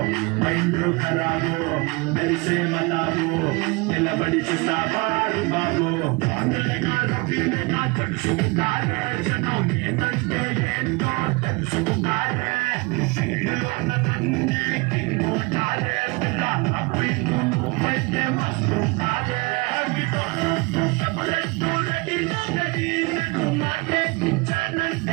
మైండ్ ఖరాబో మెరిసే బతాబో నిలబడి చూస్తావారు బాబో. తెలుసుకున్నారే జనం ఏంటంటే ఏంటో తెలుసుకున్నారే.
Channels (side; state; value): left; quieter; 25.4 dB